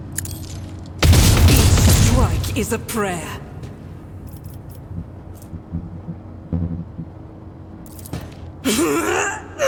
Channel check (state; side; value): identical; both; correlation 1.00